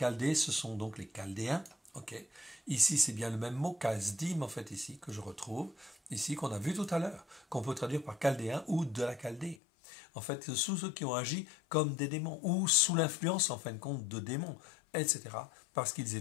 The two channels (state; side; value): drops out; right; at 9.6 s